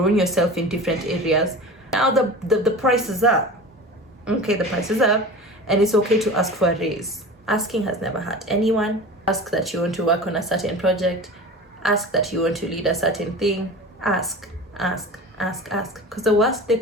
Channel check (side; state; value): both; normal; correlation 0.35